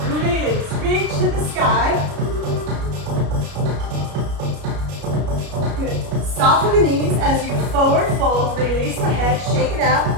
Release, reach to the sky. Good. Soften the knees as you forward fold. Release the head, shake it out.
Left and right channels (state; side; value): late; left; 33 ms